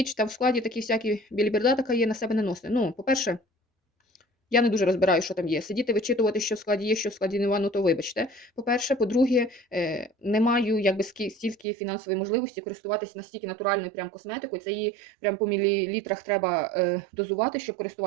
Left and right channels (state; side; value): drops out; left; at 11.7 s